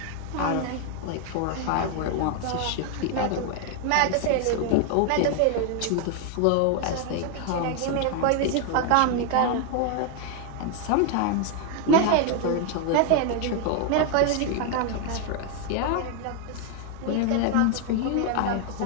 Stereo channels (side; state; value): both; different; correlation 0.00